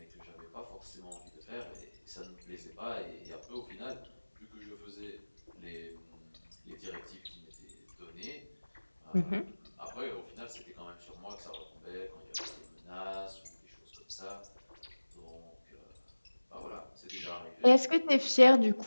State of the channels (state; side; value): inverted; both; correlation -1.00